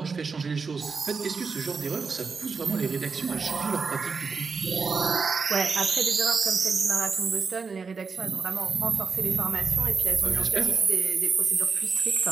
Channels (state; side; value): quieter; left; 5.0 dB